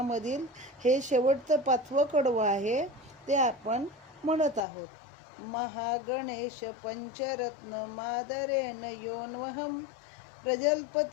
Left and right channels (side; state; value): right; drops out; at 4.6 s